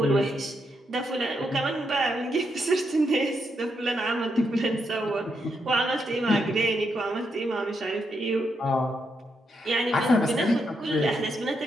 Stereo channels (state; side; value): normal; both; correlation 0.81